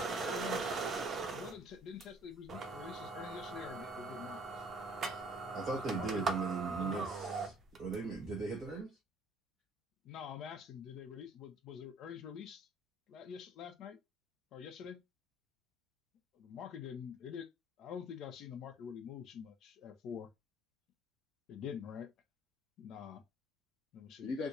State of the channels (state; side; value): normal; both; correlation 0.57